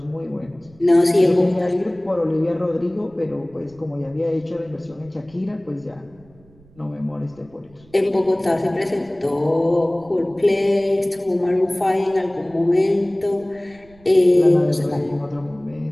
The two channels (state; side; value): noise; right; rumble, 27 dB below the sound